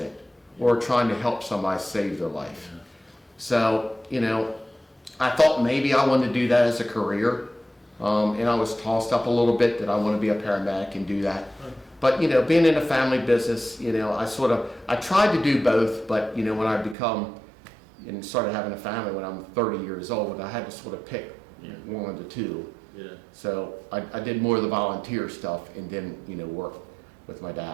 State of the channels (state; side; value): drops out; left; at 16.9 s